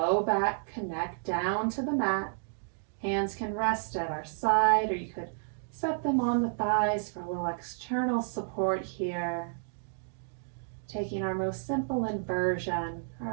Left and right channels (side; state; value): left; silent; digital silence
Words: back connect down to the mat. Hands can rest at our side, or you could set them on the thighs for a little external support here. Taking our most simple inversion,